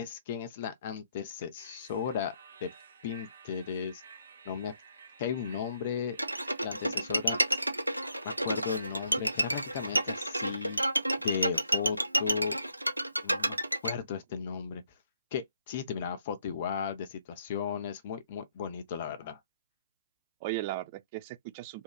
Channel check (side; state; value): both; inverted; correlation -0.73